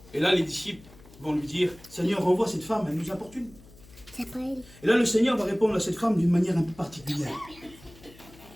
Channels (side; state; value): left; noise; hum, 22 dB below the sound